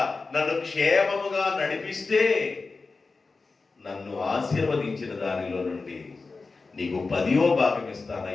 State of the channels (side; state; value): right; quieter; 4.0 dB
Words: నన్ను క్షేమముగా నడిపిస్తే నన్ను ఆశీర్వదించిన దానిలో నుండి నీకు 10వ భాగం